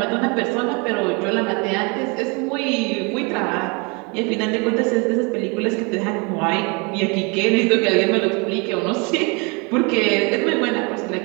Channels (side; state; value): left; quieter; 31.1 dB